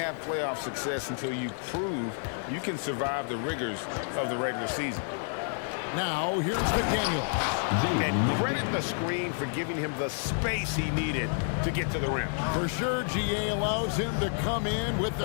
playoff success until you prove you can survive the rigors of the regular season. Now, here's McDaniel. And credit the screen for giving him the space he needed to get to the rim. For sure, GA allows him to come in with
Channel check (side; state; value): right; silent; 56 dB below the other